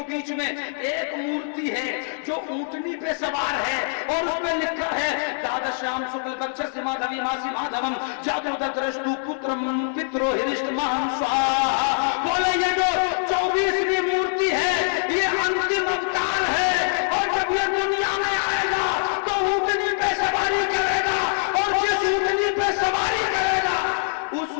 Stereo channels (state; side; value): silent; right; 63 dB below the other